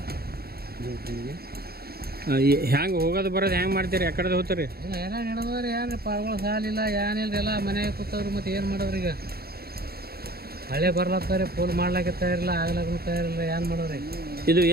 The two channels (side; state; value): left; late; 0.45 ms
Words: ಹ್ಯಾಂಗೆ ಹೋಗೋದು ಬರೋದು ಹೆಂಗೆ ಮಾಡ್ತೀರಿ? ಆ ಕಡೆ ಹೋಗ್ತಾರೆ ಏನ ನಡೆದವ್ರಿ ಏನು ಪಾರ್ಗಳು ಸಾಲಿಲ್ಲ ಏನಿಲ್ಲ ಎಲ್ಲ ಮನೆಗೆ ಕೂತವ್ರು. ಮತ್ತು ಏನು ಮಾಡೋರು ಈಗ? ಮಳೆ ಬರ್ಲತ್ತಾರೆ, ಪೋಲ್ ಮಾಡ್ಲಾಕ ತಯಾರಿಲ್ಲ, ಆಗ್ಲಾಕ ತಯಾರಿಲ್ಲ, ಏನು ಮಾಡೋರಿ? ಇದು